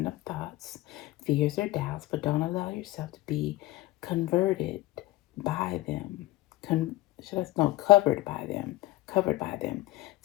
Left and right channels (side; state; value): right; quieter; 18.0 dB